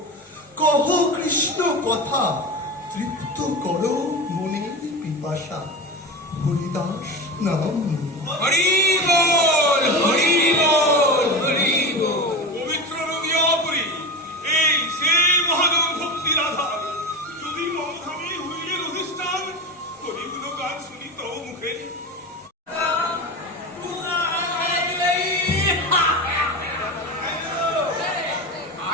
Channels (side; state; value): both; normal; correlation 0.24